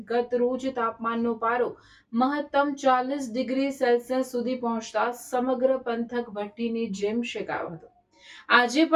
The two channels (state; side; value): identical; both; correlation 1.00